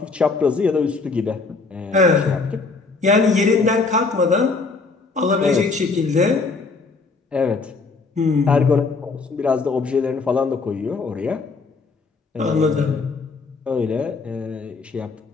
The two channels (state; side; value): quieter; right; 4.1 dB